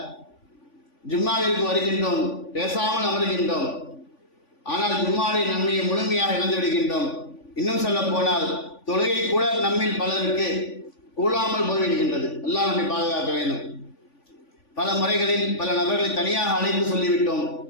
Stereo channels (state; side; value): late; right; 3.5 ms